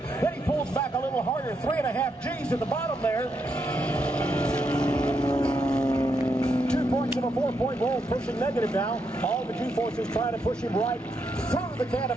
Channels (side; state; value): both; normal; correlation 0.80